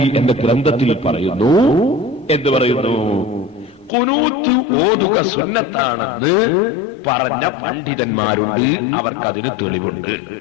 എന്ന ഗ്രന്ഥത്തിൽ പറയുന്നു. എന്ത് പറയുന്നു? ഖുനൂത്ത് ഓതുക സുന്നത്താണെന്ന് പറഞ്ഞ പണ്ഡിതന്മാരുണ്ട്, അവർക്കതിന് തെളിവുണ്ട്.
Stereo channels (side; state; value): right; drops out; at 3.9 s